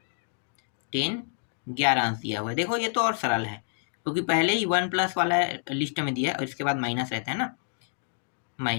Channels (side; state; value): right; silent; digital silence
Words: 10 11 अंश दिया हुआ है। देखो ये तो और सरल है, क्योंकि पहले ही 1 प्लस वाला लिस्ट में दिया है और इसके बाद माइनस रहता है ना,